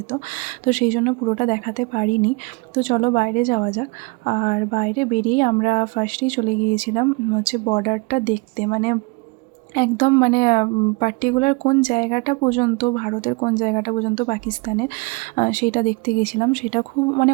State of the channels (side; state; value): left; quieter; 28.5 dB